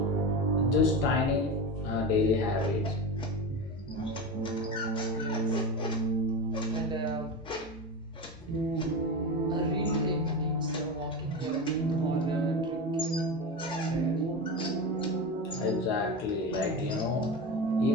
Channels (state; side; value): normal; both; correlation 0.23